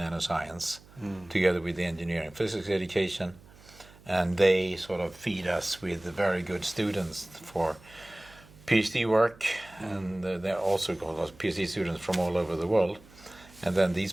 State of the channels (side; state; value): right; noise; hum, 24 dB below the sound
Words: together with the engineering physics education. And they sort of feed us with very good students for Ph.D. work, and they're also called Ph.D. students from all over the world. And then these